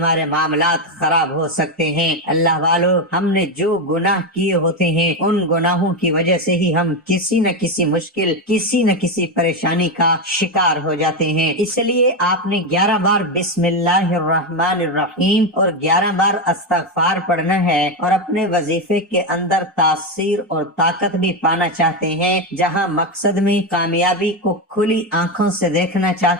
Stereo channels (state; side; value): normal; both; correlation 0.10